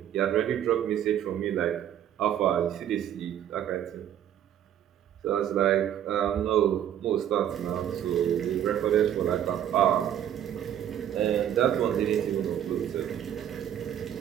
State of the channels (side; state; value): left; quieter; 10.5 dB